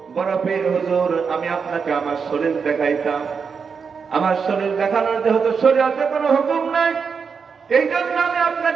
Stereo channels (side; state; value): left; quieter; 5.8 dB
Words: বড় পীর হুজুর আমি আপনাকে আমার শরীর দেখাইতাম। আমার শরীর দেখানোর যেহেতু শরীয়তে কোনো হুকুম নাই, এই জন্য আমি